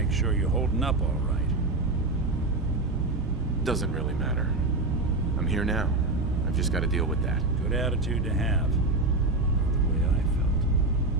sure you're holding up all right. Doesn't really matter. I'm here now. I've just got to deal with that. Good attitude to have. Not the way I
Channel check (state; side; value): quieter; left; 3.1 dB